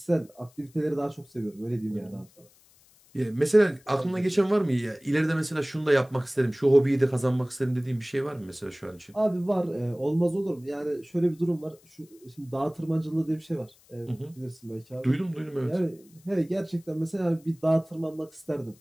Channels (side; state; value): left; noise; hiss, 29 dB below the sound